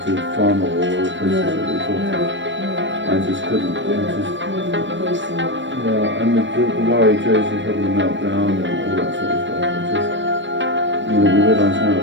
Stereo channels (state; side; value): late; left; 0.54 ms